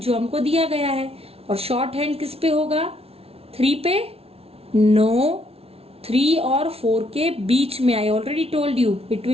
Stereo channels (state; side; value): late; left; 0.29 ms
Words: हमको दिया गया है. और शॉर्ट हैंड किस पे होगा? 3 पे? नो, 3 और 4 के बीच में. I already told you it